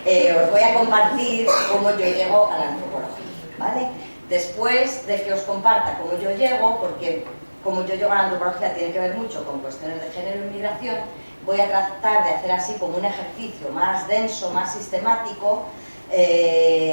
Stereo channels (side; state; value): both; inverted; correlation -1.00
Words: voy a compartir cómo yo llego a la antropología, ¿vale? Después de que os comparta cómo yo llego, porque cómo yo llego a la antropología tiene que ver mucho con cuestiones de género y migración, voy a tratar de hacer así como un ejercicio más denso, más sistemático,